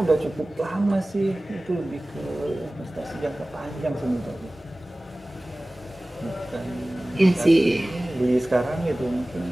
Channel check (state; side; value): normal; both; correlation 0.98